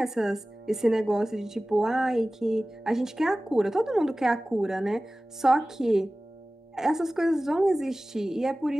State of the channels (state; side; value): normal; both; correlation 0.97